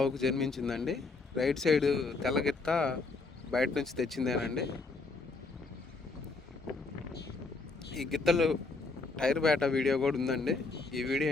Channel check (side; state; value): right; quieter; 3.8 dB